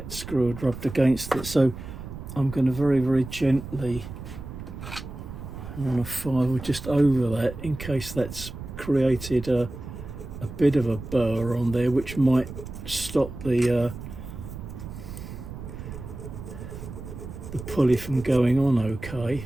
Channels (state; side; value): noise; right; rumble, 11 dB below the sound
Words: screw had rubbed against it. So I'm going to very, very gently run a file just over that, in case that's created a a bit of a burr on there, which might stop the pulley from going on okay.